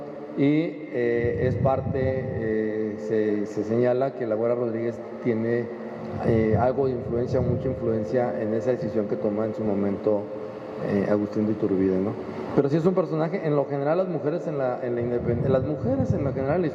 y es parte, se señala que la Güera Rodríguez tiene algo de influencia, mucha influencia en esa decisión que toma en su momento Agustín de Iturbide, ¿no? Pero sí es un personaje. En lo general, las mujeres las mujeres en lo general en la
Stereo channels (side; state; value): both; identical; correlation 1.00